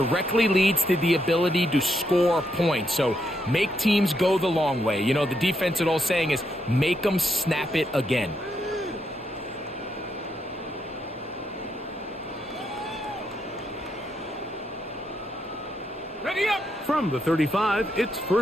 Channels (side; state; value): both; normal; correlation 0.79